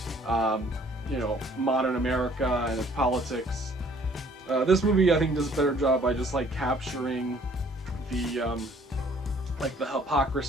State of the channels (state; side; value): normal; both; correlation 0.58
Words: you know, modern America and its politics. This movie I think does a better job by just like capturing the like the